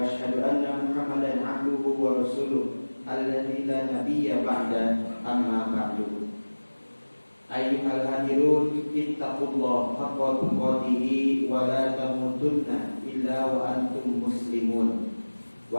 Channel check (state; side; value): inverted; both; correlation -1.00